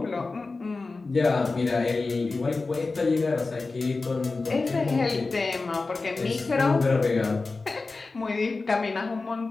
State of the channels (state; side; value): quieter; right; 3.8 dB